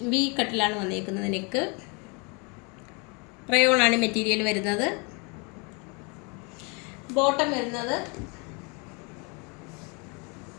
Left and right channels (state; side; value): quieter; right; 32.0 dB